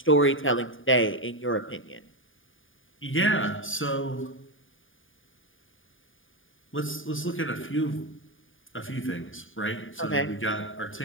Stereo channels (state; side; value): late; right; 0.58 ms